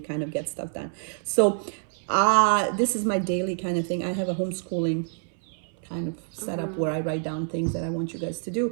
of get stuff done. So this is my daily kind of thing. I have a homeschooling kind of setup where I write down things that I want you guys to do.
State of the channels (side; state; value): left; silent; 60 dB below the other